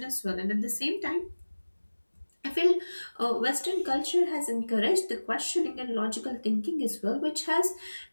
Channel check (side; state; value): both; inverted; correlation -1.00